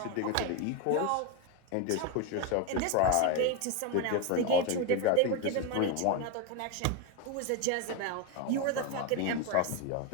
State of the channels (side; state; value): both; different; correlation 0.02